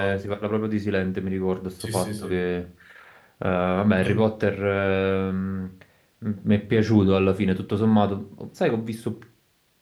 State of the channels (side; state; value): both; identical; correlation 1.00